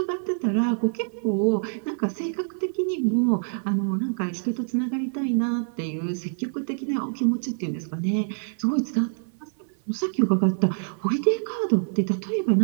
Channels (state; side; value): silent; left; 57 dB below the other